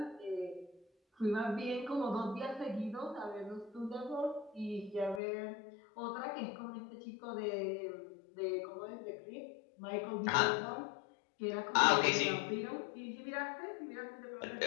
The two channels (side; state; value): right; drops out; at 5.2 s